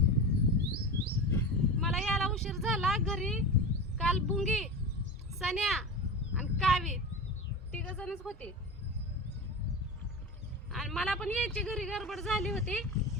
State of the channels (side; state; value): both; normal; correlation 0.27